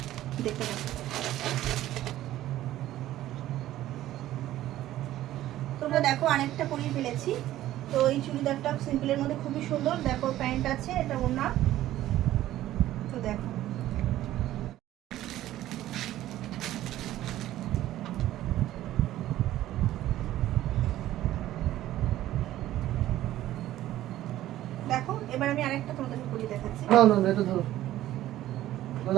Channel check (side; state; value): left; quieter; 14.1 dB